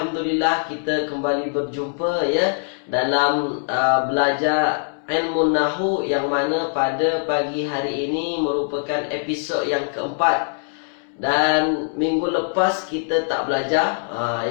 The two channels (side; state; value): right; silent; digital silence